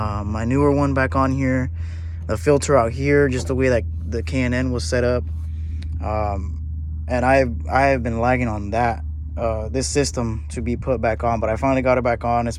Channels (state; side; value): identical; both; correlation 1.00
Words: my newer one back on here, the filter out here, just the way that the K&N was set up. um, and I have been lagging on that this system to be put back on, but I finally got it back on. It's